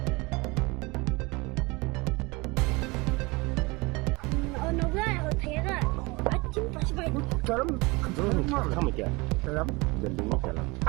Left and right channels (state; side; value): quieter; left; 25.2 dB